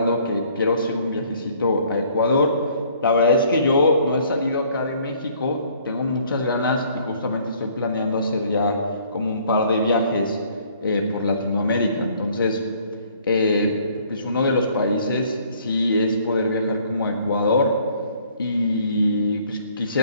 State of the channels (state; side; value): inverted; both; correlation -0.60